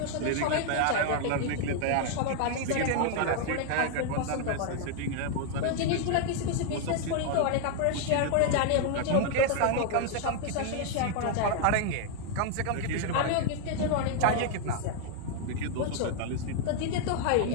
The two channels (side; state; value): both; different; correlation 0.00